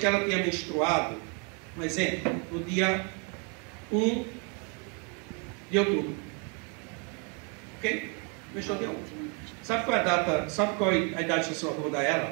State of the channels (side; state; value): left; quieter; 35.9 dB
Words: ela tenha menstruado, um exemplo, no dia 1 de outubro. Ok? Menstruou dia 1. Sabe qual é a data? Sabe qual é a idade gestacional que eu vou dar a